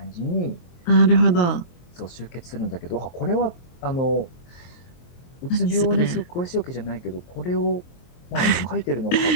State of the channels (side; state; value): right; late; 23 ms